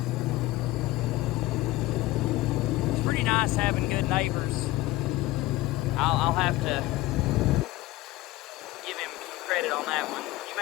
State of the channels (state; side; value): quieter; right; 17.8 dB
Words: It's pretty nice having good neighbors. I'll have to give him credit on that one. You